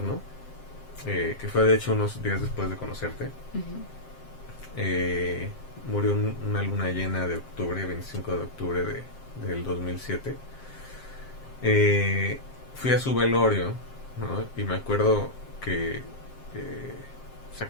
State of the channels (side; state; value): right; late; 7.6 ms